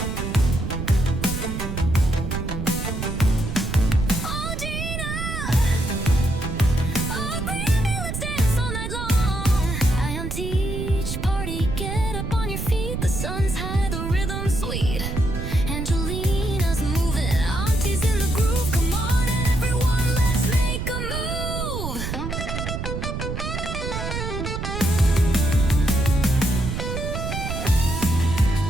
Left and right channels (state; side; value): noise; right; rumble, 4 dB below the sound